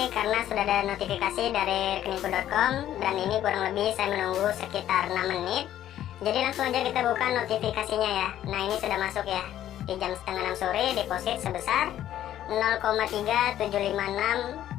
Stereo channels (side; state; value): right; quieter; 12.0 dB